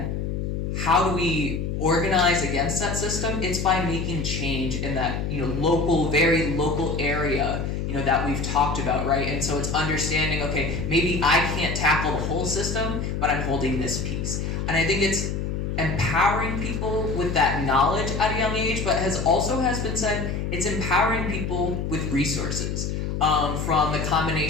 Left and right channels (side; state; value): left; noise; hum, 2 dB below the sound